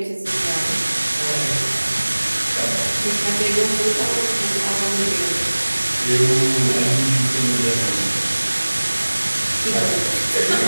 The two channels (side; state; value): both; inverted; correlation -1.00